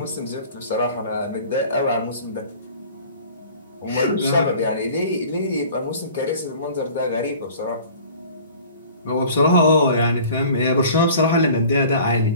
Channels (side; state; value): both; inverted; correlation -0.47